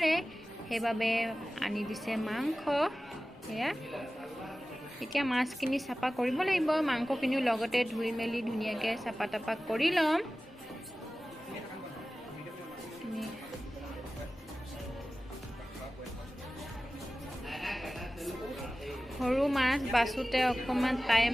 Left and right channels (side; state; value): both; normal; correlation 0.96